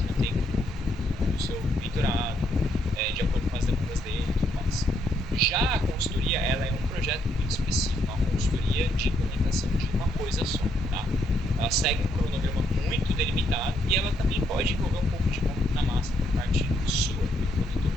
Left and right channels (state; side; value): normal; both; correlation 0.74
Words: no tempo do seu mentorado, de acordo com as demandas dele e tudo mais.